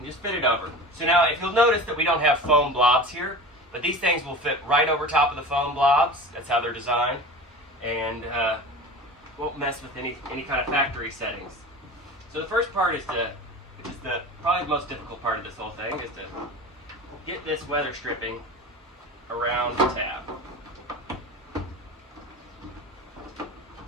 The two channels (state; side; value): normal; both; correlation 0.34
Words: just fit it over. So now if you'll notice that we don't have foam blobs here, but these things will fit right over top of the foam blobs. That's how they're designed, and won't mess with any kind of factory settings. So the first part is which is probably the most difficult part of this whole thing, is to get this weather stripping around the tab.